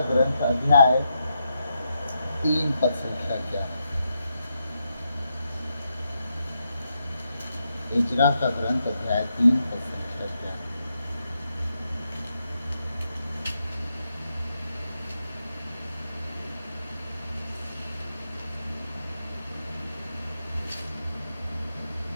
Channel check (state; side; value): inverted; both; correlation -0.83